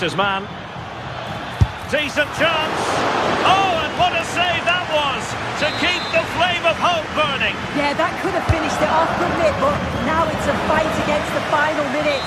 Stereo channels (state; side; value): identical; both; correlation 1.00